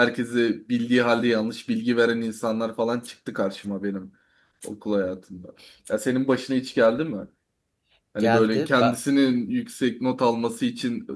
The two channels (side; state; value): both; identical; correlation 1.00